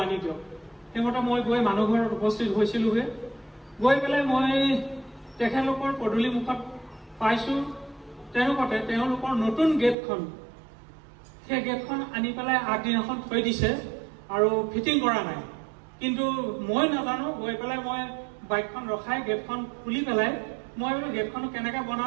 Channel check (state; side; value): drops out; left; at 10.0 s